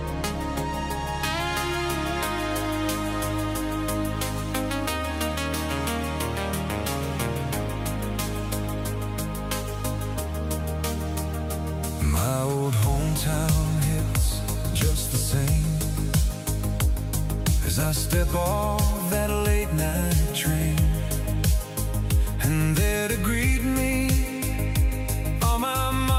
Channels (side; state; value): both; identical; correlation 1.00